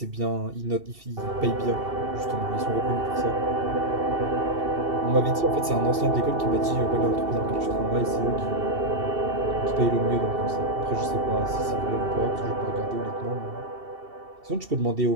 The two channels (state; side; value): late; left; 2.7 ms